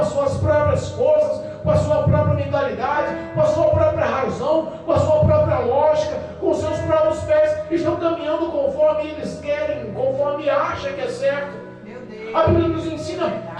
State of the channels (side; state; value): both; identical; correlation 1.00